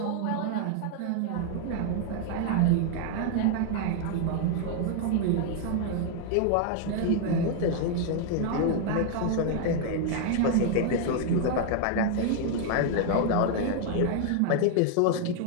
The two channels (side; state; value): both; different; correlation 0.00